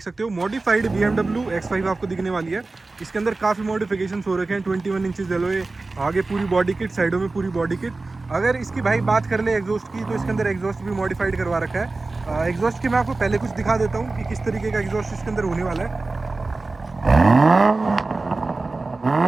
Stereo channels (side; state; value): left; quieter; 3.4 dB